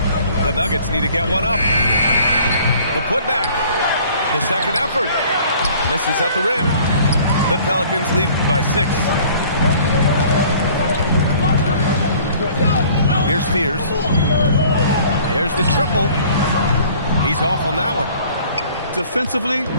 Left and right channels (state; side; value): inverted; both; correlation -0.52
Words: The Nuggets need to get one up. The putback. The second effort. Misses at the rim. The Pelicans lead by 6. Here's Fears. Here's the triple. He's off on that one. Defensively, you